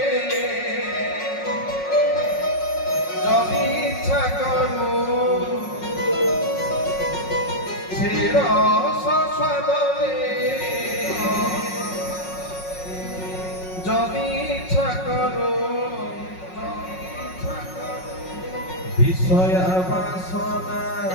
যদি ইচ্ছা করু, শিরস সদনে যদি ইচ্ছা করু, বিষয়া বাসনা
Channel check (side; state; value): right; late; 5.4 ms